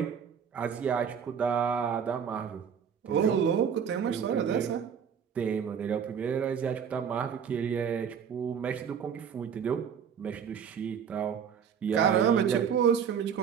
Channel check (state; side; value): quieter; left; 7.5 dB